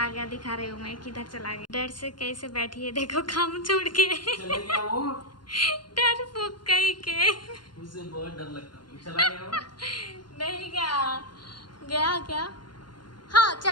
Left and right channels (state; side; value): late; right; 0.71 ms